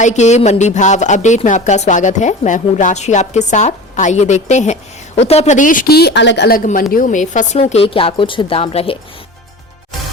के मंडी भाव अपडेट में आपका स्वागत है। मैं हूं राशि आपके साथ। आइए देखते हैं उत्तर प्रदेश की अलग अलग मंडियों में फसलों के क्या कुछ दाम रहे।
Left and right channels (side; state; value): both; normal; correlation 0.35